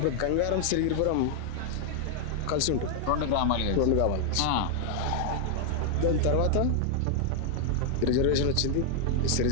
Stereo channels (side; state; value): both; different; correlation 0.00